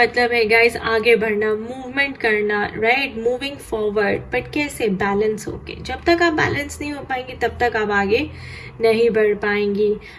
है गाइस आगे बढ़ना, मूवमेंट करना, राइट? मूविंग फॉरवर्ड, बट कैसे? बैलेंस होके। जब तक आप बैलेंस नहीं हो पाएंगे तब तक आप आगे नहीं बढ़ पाएंगी,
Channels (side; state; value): both; identical; correlation 1.00